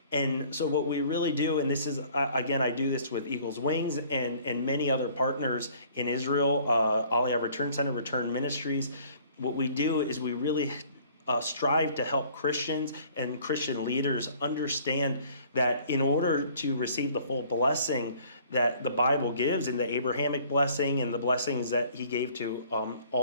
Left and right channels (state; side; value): inverted; both; correlation -0.56